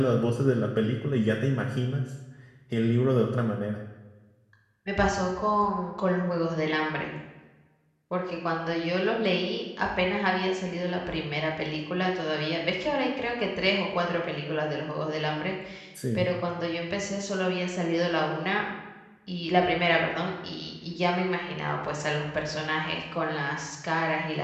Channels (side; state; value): both; identical; correlation 1.00